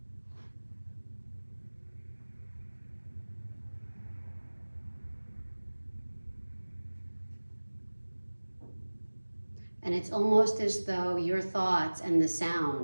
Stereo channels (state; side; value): inverted; both; correlation -1.00